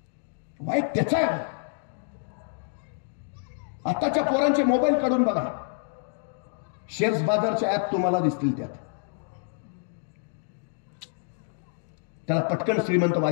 वाईट त्याचा आहे. आताच्या पोरांचे मोबाईल काढून बघा, शेअर्स बाजारचे ऍप तुम्हाला दिसतील. त्याला पटकन श्रीमंत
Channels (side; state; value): right; silent; digital silence